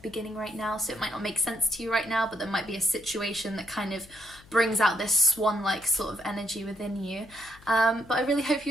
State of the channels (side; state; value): left; noise; hum, 24 dB below the sound